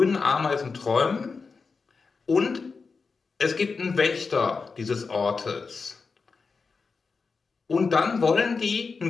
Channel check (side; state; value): right; quieter; 4.7 dB